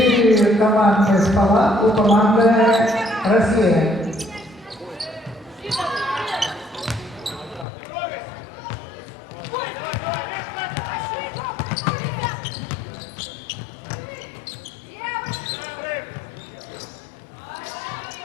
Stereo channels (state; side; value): drops out; right; at 7.7 s